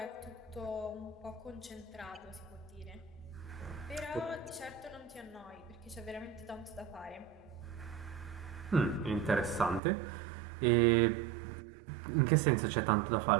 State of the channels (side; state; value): left; drops out; at 9.8 s